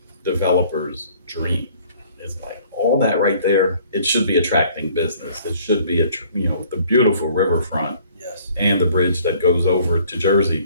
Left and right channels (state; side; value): inverted; both; correlation -0.57